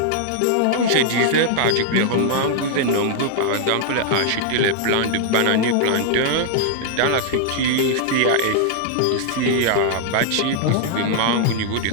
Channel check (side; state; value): both; different; correlation -0.01